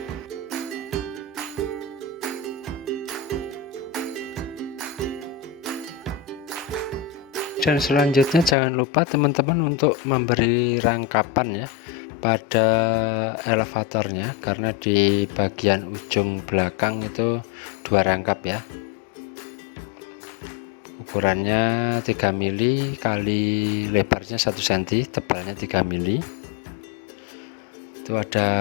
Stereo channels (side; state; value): right; drops out; at 8.6 s